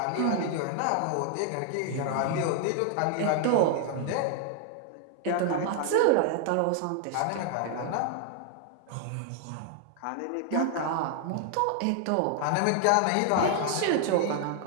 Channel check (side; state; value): both; different; correlation 0.00